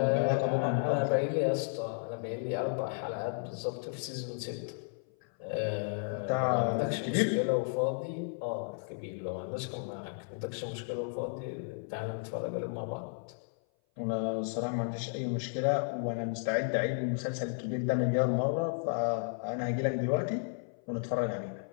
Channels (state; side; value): silent; right; 56 dB below the other